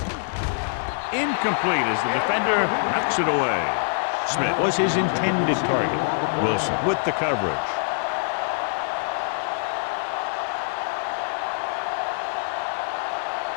Incomplete as the defender knocks it away. Smith was his intended target. Wilson with the coverage.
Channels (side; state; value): right; silent; digital silence